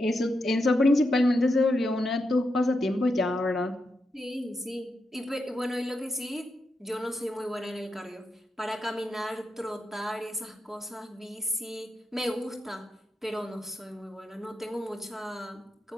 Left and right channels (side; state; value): both; normal; correlation 0.85